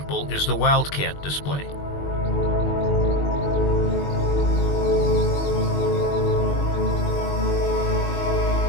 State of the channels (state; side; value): late; right; 21 ms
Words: is the wildcat display.